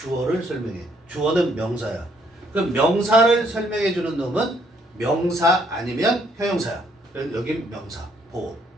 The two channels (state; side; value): normal; both; correlation 0.68